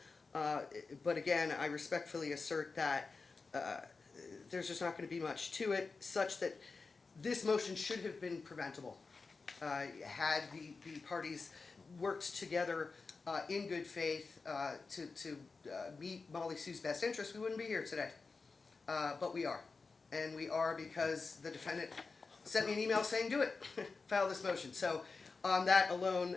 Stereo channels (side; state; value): right; quieter; 4.3 dB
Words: But again, I respectfully assert that there's just not going to be much to it, such that this motion should have been preventable. Had the parties worked together in good faith to meet Molly Sue's best interest, we wouldn't be here today. But we are. And we are because the defendant sent me an email saying, do it, file this motion. So on that alone,